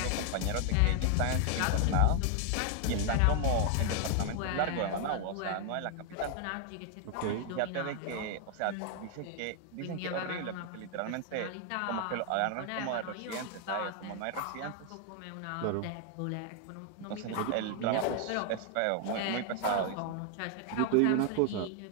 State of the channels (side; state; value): both; different; correlation 0.00